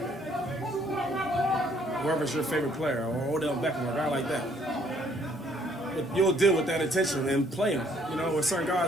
whoever's your favorite player, or Odell Beckham, or a guy like that, but you'll deal with that attention and play him. With certain guys,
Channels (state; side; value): normal; both; correlation 0.64